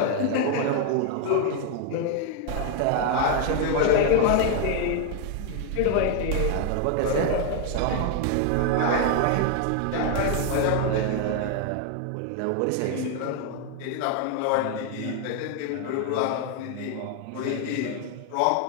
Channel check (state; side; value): different; both; correlation 0.01